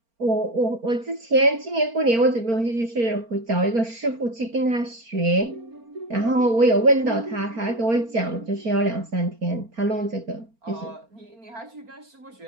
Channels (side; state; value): left; late; 4.4 ms